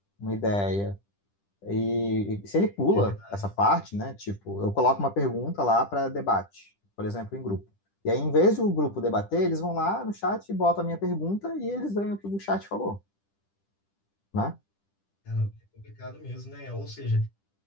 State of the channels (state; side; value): late; right; 10 ms